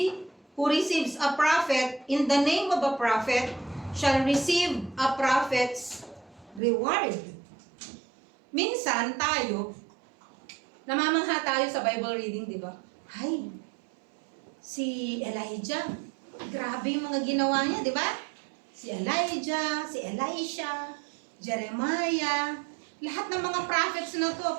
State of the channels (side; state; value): left; drops out; at 6.6 s